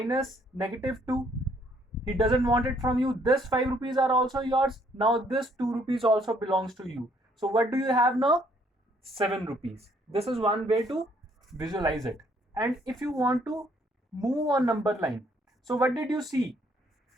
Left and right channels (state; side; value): normal; both; correlation 0.66